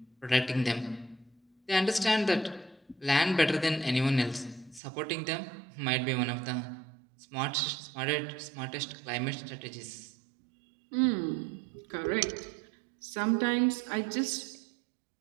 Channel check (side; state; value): left; drops out; at 4.8 s